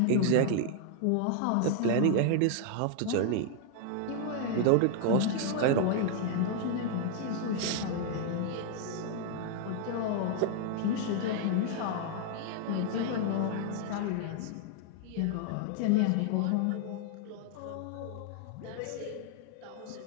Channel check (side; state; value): both; different; correlation 0.00